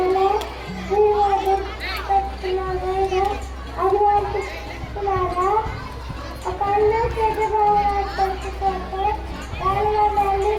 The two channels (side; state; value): both; identical; correlation 1.00